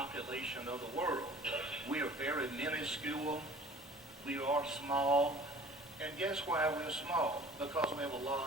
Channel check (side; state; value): both; normal; correlation 0.47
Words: of the world. We are very minuscule. We are small. And guess why we're small? Because we have a